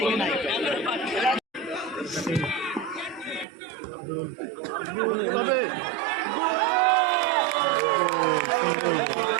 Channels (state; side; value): drops out; left; at 3.5 s